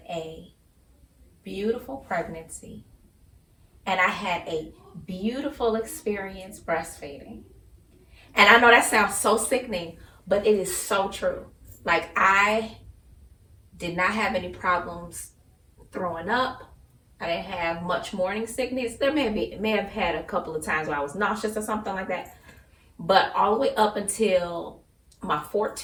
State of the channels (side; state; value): both; identical; correlation 1.00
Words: a beautiful pregnancy and I had a beautiful experience breastfeeding. And I know that sounds so sickening, but it is so true. Like, I did not have any problems throwing up. I didn't have much morning sickness. There may have had a couple of times where I was nauseous or something like that. But all the way up until my